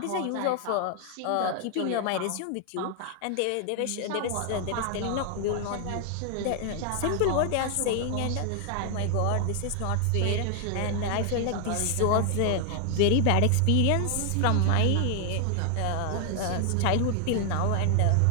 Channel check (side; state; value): both; different; correlation 0.00